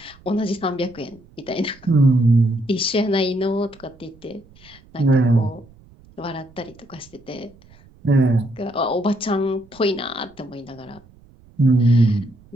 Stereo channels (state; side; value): noise; right; rumble, 26 dB below the sound